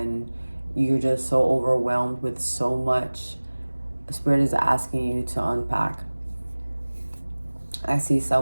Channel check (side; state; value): both; inverted; correlation -1.00